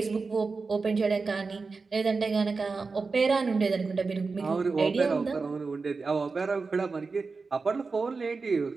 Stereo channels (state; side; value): quieter; left; 4.3 dB